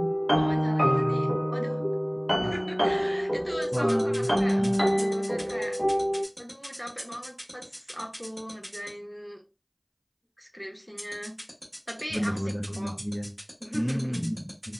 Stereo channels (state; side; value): identical; both; correlation 1.00